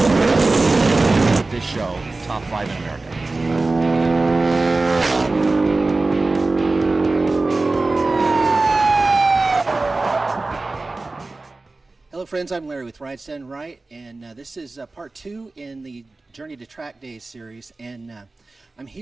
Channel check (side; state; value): left; quieter; 3.3 dB